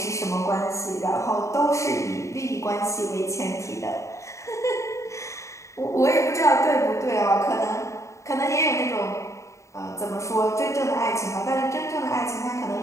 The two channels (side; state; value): right; late; 0.14 ms